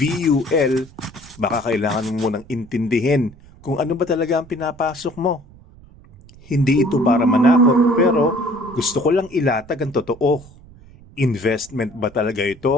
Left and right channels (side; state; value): right; noise; rumble, 23 dB below the sound